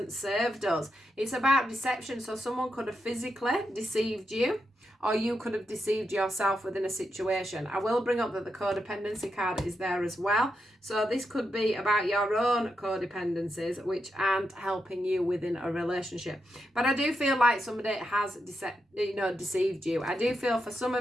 served us. It's about deception. So someone could have physically deceived you, or you could have deceived yourself within a situation. I will bring up that the codependency card is there as well. So this could be about your own codependencies, which aren't helping you within a relationship. But I do feel like somebody has deceived you. I do feel for some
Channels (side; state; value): both; normal; correlation 0.85